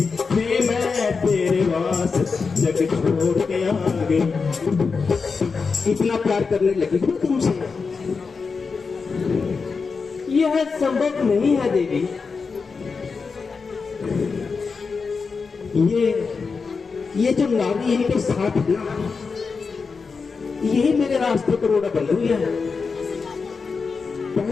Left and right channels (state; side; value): quieter; right; 4.9 dB